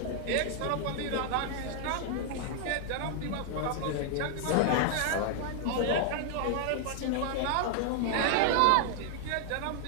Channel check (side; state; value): both; different; correlation 0.00